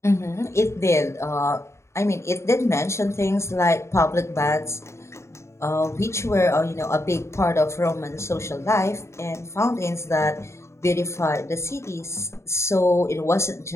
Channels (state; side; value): late; right; 0.13 ms